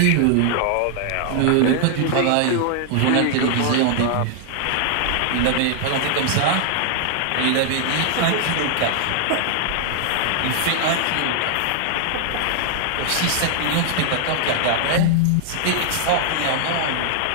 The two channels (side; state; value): both; different; correlation 0.00